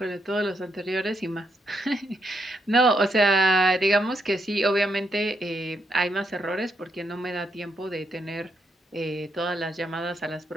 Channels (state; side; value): normal; both; correlation 0.78